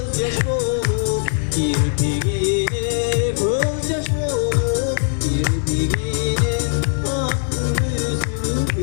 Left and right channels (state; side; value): silent; right; 66 dB below the other